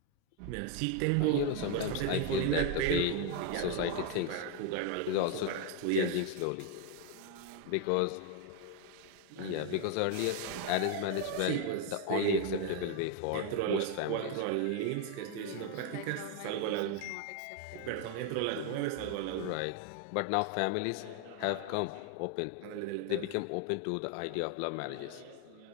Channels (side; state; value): both; different; correlation 0.01